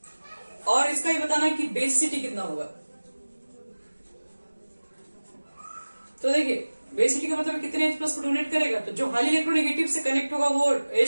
और इसका ही बताना है कि बेसिसिटी कितना होगा। तो देखिए, बेसिसिटी का मतलब कितने H प्लस को डोनेट करेगा। तो जो हाईली इलेक्ट्रोनेगेटिव से कनेक्ट होगा वो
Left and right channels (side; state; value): both; inverted; correlation -1.00